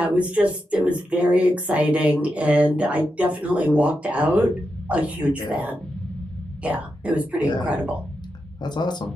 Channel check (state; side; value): normal; both; correlation 0.87